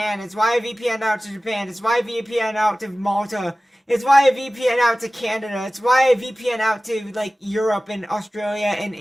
It's why I VPN out to Japan. It's why I VPN out to Malta. It's why I VPN out to Canada. It's why I VPN out to like Europe and Australia and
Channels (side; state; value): both; normal; correlation 0.97